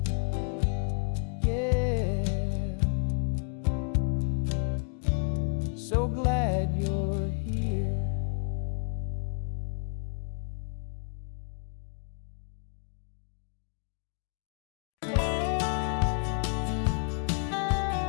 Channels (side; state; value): right; silent; 55 dB below the other